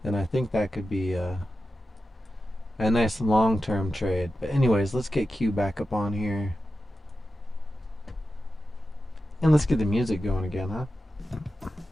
then I think that could be a nice long-term trade. But anyways, let's get Q back up on here. And let's get the music going again, huh?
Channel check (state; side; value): normal; both; correlation 0.92